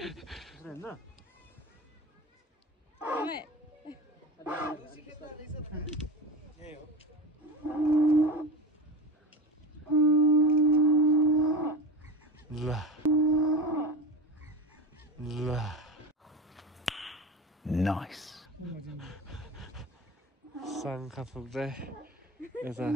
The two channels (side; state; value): both; normal; correlation 0.26